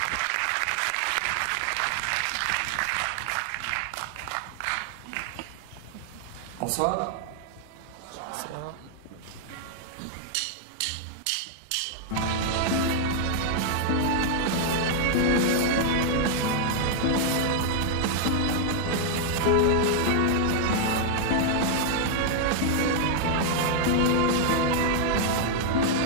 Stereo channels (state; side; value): different; both; correlation 0.00